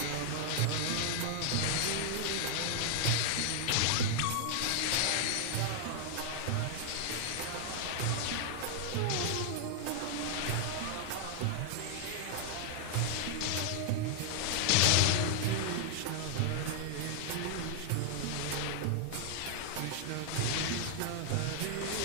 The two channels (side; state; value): both; different; correlation 0.00